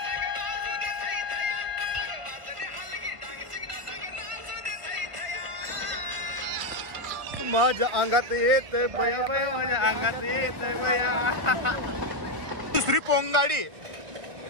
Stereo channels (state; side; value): late; left; 1.5 ms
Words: माझ्या अंगात येत बया बया माझ्या अंगात येत बया. दुसरी पोंगाडी